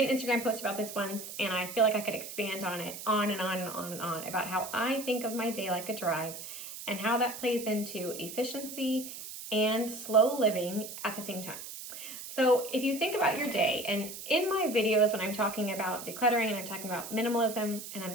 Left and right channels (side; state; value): right; noise; hiss, 10 dB below the sound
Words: an Instagram post about this once, and I feel like I could expand on it on and on and on and on about how I think of my day like a drive and how that plays into efficiency and slow living at the same time. So if you think about your day, and in my videos when I'm talking about decluttering and I'm talking about minimalism and I'm